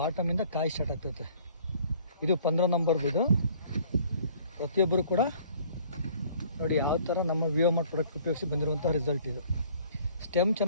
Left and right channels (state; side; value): inverted; both; correlation -0.55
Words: ಕಾಯಿ ಸ್ಟಾರ್ಟ್ ಆಗ್ತೈತೆ. ಇದು 15 ನಂಬರ್ದು. ಇದು ಪ್ರತಿಯೊಬ್ಬರು ಕೂಡ ನೋಡಿ ಯಾವ ಥರ ನಮ್ಮ ವಿಯೋಮಾರ್ಟ್ ಪ್ರಾಡಕ್ಟ್ ಉಪಯೋಗಿಸಿ ಬಂದಿರುವಂಥ ರಿಸಲ್ಟ್ ಇದು. ಸ್ಟೆಮ್